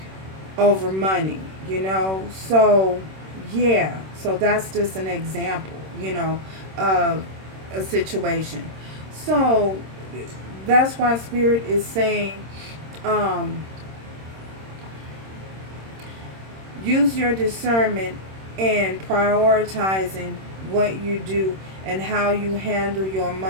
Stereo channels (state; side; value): late; left; 26 ms